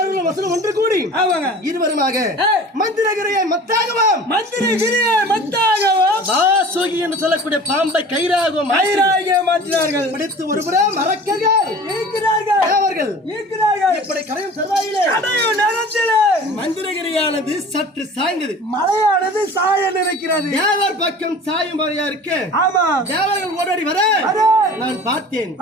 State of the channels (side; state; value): both; normal; correlation 0.42